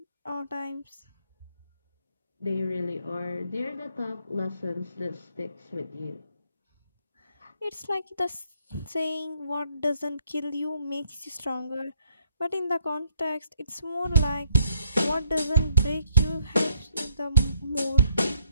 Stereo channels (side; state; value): both; inverted; correlation -0.72